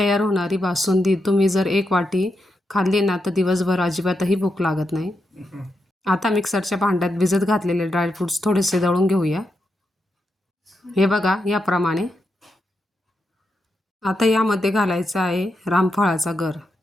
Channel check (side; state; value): both; normal; correlation 0.85